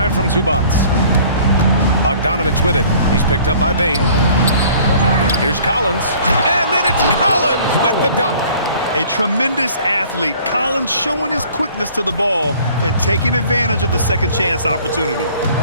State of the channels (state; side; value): inverted; both; correlation -0.52